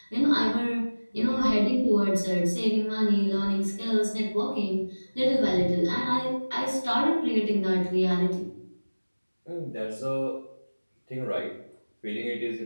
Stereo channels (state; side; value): inverted; both; correlation -1.00